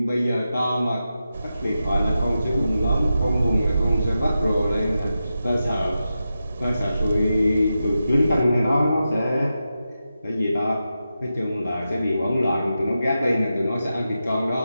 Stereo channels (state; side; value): inverted; both; correlation -0.90